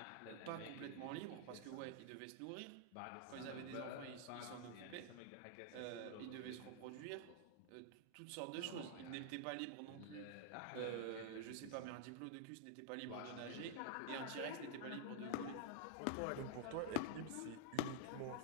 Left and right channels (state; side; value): different; both; correlation -0.01